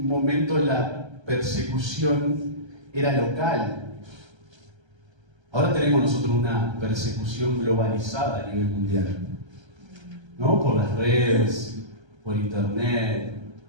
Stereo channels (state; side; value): late; left; 1.3 ms